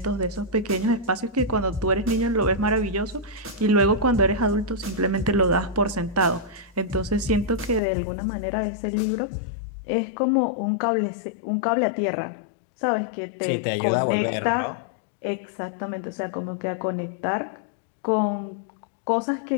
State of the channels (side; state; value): right; drops out; at 7.8 s